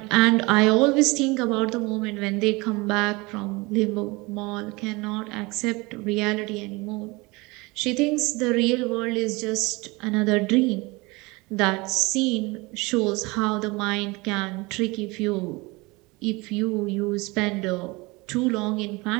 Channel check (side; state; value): left; quieter; 24.4 dB